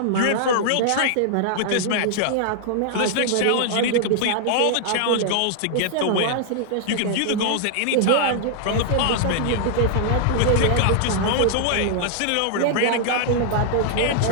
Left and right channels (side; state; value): both; different; correlation -0.01